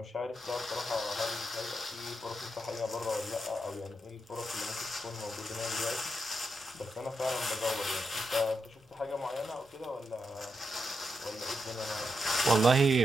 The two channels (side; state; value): both; normal; correlation 0.85